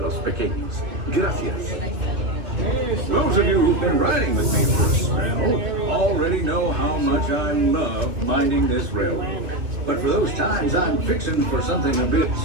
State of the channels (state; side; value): late; left; 2.8 ms